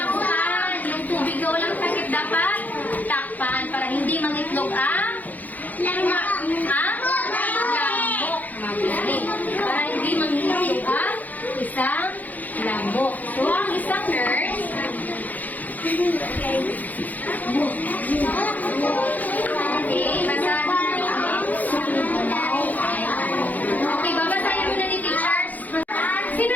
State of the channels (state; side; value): late; right; 0.081 ms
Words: Yung tubig na walang takip dapat takpan para hindi mangitlog ang lamok. Magaling. Para hindi mangitlog ang isang lamok. So, ang isang nurse okay, babasahin mo na ni teachers. Sino